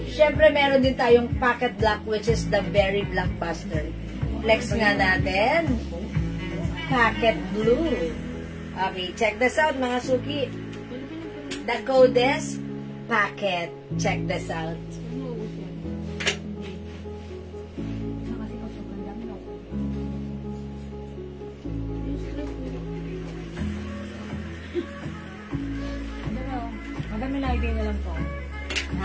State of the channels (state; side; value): identical; both; correlation 1.00